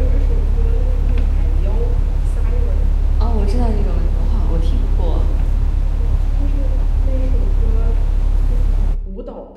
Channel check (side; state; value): both; identical; correlation 1.00